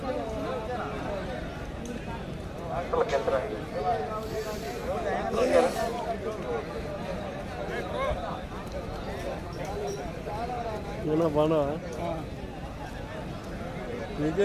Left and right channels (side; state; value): both; identical; correlation 1.00